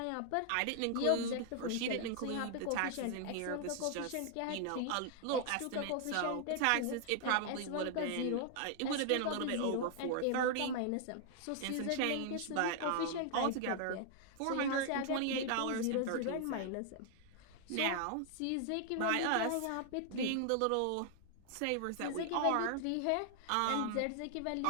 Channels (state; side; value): different; both; correlation 0.00